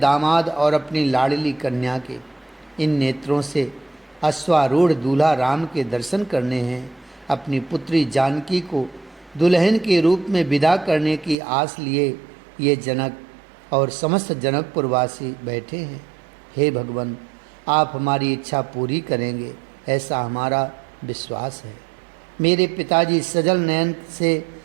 और अपनी लाडली कन्या के। इन नेत्रों से अश्वारूढ़ दूल्हा राम के दर्शन करने हैं। अपनी पुत्री जानकी को दुल्हन के रूप में विदा करने की आस लिए ये जनक और समस्त जनकपुरवासी बैठे हैं। हे भगवान, आप हमारी इच्छा पूरी करेंगे, ऐसा हमारा विश्वास है। मेरे पिताजी सजल नयन से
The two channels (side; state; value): left; drops out; at 11.4 s